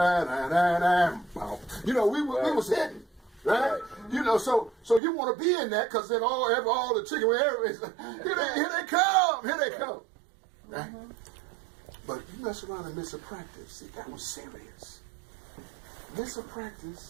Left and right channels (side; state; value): left; drops out; at 5.0 s